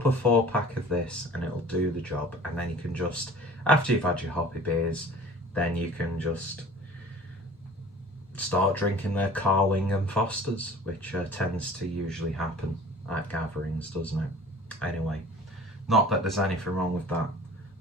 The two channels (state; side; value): normal; both; correlation 0.45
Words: a 4-pack of this and it'll do the job. And then you can just, after you've had your hoppy beers, then you can just start drinking their Carling and Fosters, which tends to usually happen at gatherings, doesn't it? Anyway, not that there's anything wrong with that,